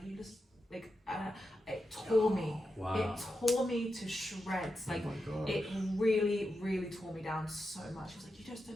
you just, like, it tore me. Wow. It tore me to shreds. Like, it really, really tore me down so much. He was like, you just don't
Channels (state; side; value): normal; both; correlation 0.88